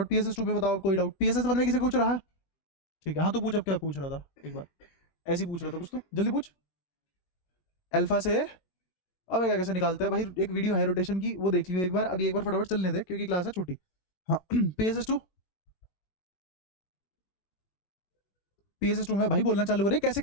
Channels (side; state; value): right; late; 20 ms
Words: पीएसएस 2 पे बताओ कोई डाउट? पीएसएस 1 में किसी को कुछ रहा है? ठीक है हाँ तो पूछ, अब क्या पूछ रहा था एक बार, ऐसे ही पूछ रहा था कुछ तो जल्दी पूछ। अल्फा से अब क्या कैसे निकालते हैं भाई, एक वीडियो है रोटेशन की वो देख लियो एक बार, अभी एक बार फटाफट चलने दे क्योंकि क्लास है छोटी। हाँ पीएसएस 2, पीएसएस 2 में भाई बोलना चालू करे, कैसे